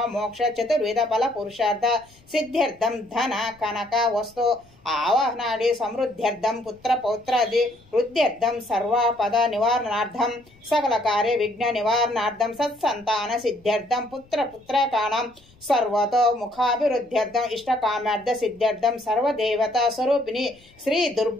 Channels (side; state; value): left; noise; rumble, 29 dB below the sound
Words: మోక్ష చతుర్విధ ఫల పురుషార్థ సిద్ధ్యర్థం ధన కనక వస్తు ఆవాహనాది సమృద్ధ్యర్థం పుత్ర పౌత్రాది వృద్ధ్యర్థం సర్వపద నివారణార్థం సకల కార్య విఘ్న నివారణార్థం సత్సంతాన సిద్ధ్యర్థం పుత్ర పుత్రకాణం సర్వతో ముఖాభివృద్ధ్యర్థం ఇష్టకామార్థ సిద్ధ్యర్థం సర్వదేవత స్వరూపిణి శ్రీ